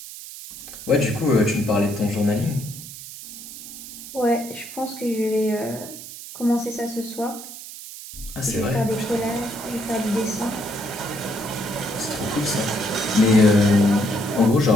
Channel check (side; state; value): right; noise; hiss, 13 dB below the sound